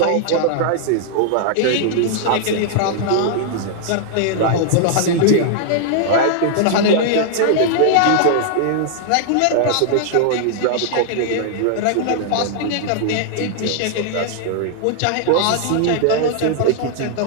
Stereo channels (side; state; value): both; different; correlation -0.01